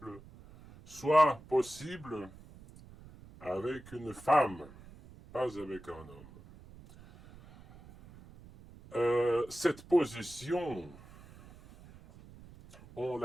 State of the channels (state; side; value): noise; right; rumble, 20 dB below the sound